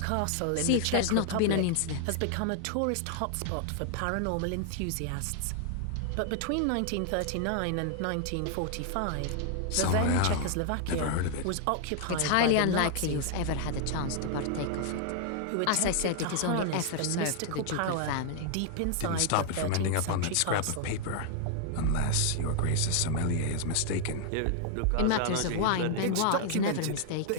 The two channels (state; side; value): different; both; correlation 0.00